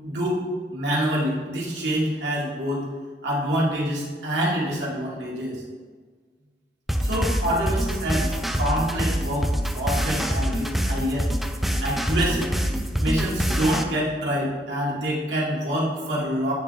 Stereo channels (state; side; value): normal; both; correlation 0.68